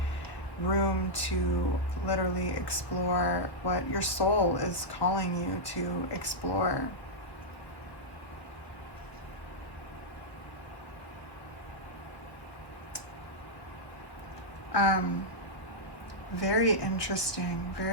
room to literally explore what your soul is calling you to explore. Very interesting,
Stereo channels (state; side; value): late; right; 1.3 ms